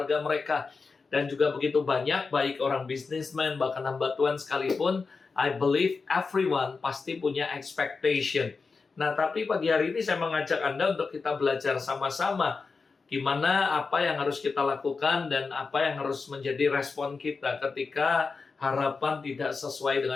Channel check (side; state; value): right; quieter; 4.6 dB